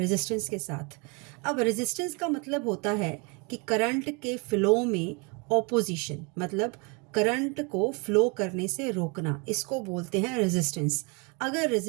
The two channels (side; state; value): left; quieter; 31.6 dB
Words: के साथ। अब रेजिस्टेंस का मतलब होता है कि करंट के फ्लो में ऑपोजिशन, मतलब करंट को फ्लो करने से रोकना, इसको बोलते हैं रेजिस्टेंस। अगर